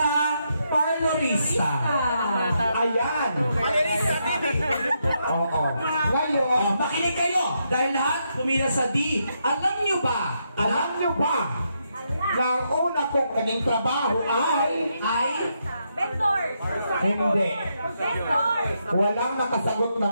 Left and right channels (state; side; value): inverted; both; correlation -0.80